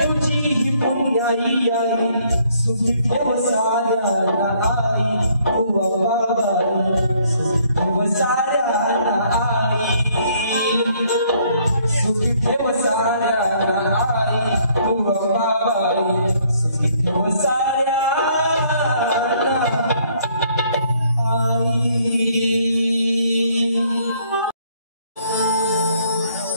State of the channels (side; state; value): both; inverted; correlation -0.65